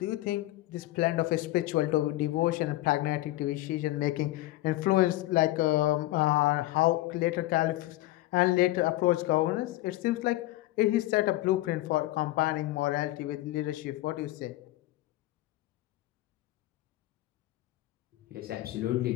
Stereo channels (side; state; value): right; quieter; 17.3 dB